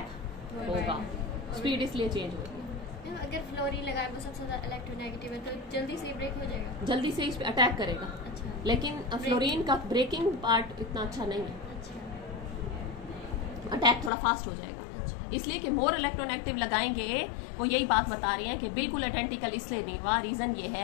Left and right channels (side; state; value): right; drops out; at 14.1 s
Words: होगा, स्पीड इसलिए चेंज होगी। अगर फ्लोरीन लगाए वो सबसे ज्यादा इलेक्ट्रोनेगेटिव है तो जल्दी से ब्रेक हो जाएगा, जल्दी से इस पे अटैक करेगा। अच्छा। लेकिन फ्लोरीन का ब्रेकिंग पार्ट इतना अच्छा नहीं है, अच्छा। अटैक थोड़ा फास्ट हो जाएगा। इसलिए कि मोर इलेक्ट्रोनेगेटिव लगाएंगे, वो यही बात बता रहे हैं कि बिल्कुल आइडेंटिकल इसलिए नहीं हुआ। रीजन ये